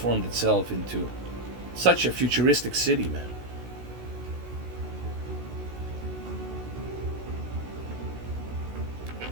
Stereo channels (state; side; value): late; left; 16 ms